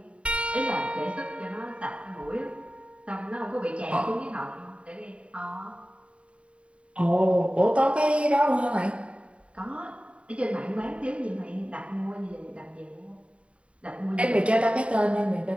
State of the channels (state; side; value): late; left; 0.061 ms